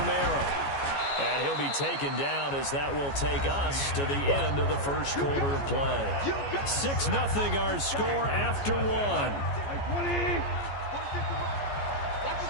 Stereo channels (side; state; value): right; late; 14 ms